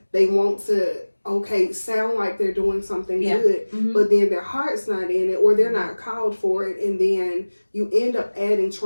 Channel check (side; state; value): both; inverted; correlation -1.00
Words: They want to sound like they're doing something good, but then their heart's not in it or they're not called for it, and then you end up adding